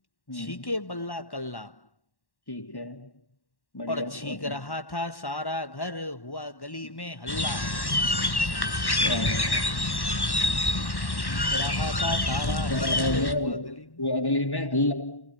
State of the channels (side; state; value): right; late; 1.1 ms